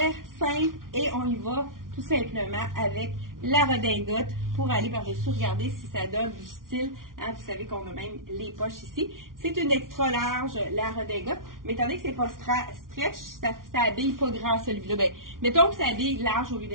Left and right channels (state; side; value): late; left; 0.90 ms